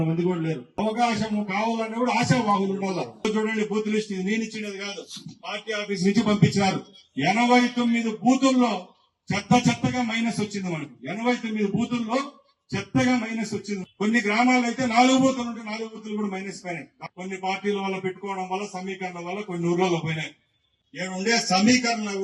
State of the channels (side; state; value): both; identical; correlation 1.00